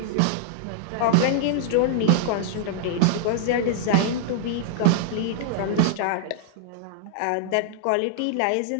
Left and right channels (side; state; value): both; different; correlation -0.01